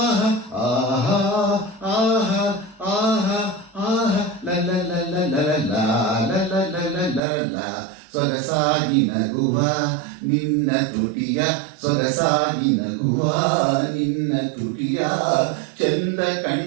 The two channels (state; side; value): drops out; left; at 7.2 s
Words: ಆಹಾ ಆಹಾ ಆಹಾ ಆಹಾ ಲಲ ಲಲ ಲಲ ಲಲ ಲಲ ಲಲ ಸೊಗಸಾಗಿ ನಗುವ ನಿನ್ನ ತುಟಿಯ ಸೊಗಸಾಗಿ ನಗುವ ನಿನ್ನ ತುಟಿಯ ಚಂದ